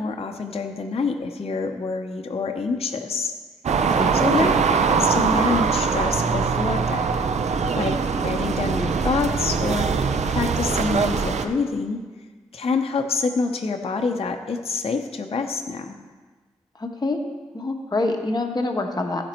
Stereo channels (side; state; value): both; normal; correlation 0.53